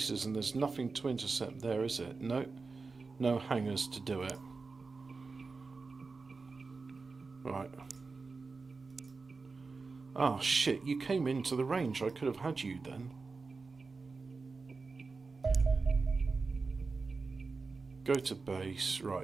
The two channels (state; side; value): quieter; left; 4.2 dB